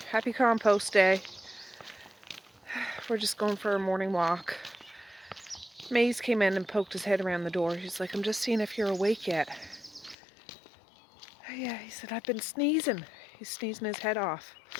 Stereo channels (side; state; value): right; drops out; at 10.2 s